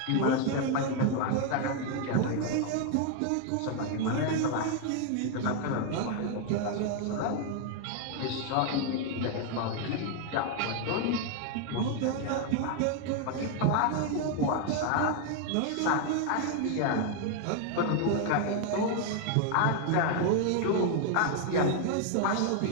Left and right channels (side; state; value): both; different; correlation 0.00